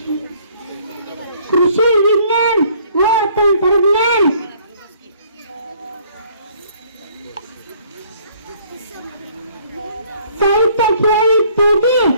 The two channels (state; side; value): inverted; both; correlation -0.61